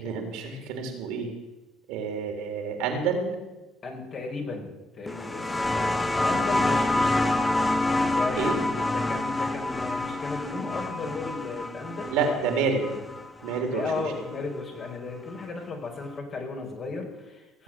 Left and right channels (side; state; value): both; normal; correlation 0.75